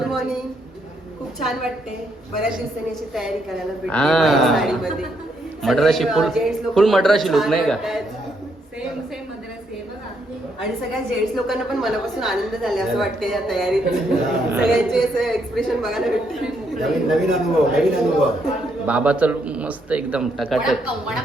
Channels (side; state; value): both; normal; correlation 0.75